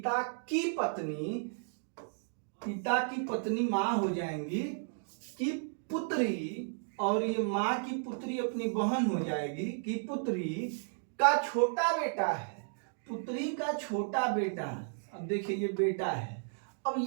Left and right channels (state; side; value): silent; left; digital silence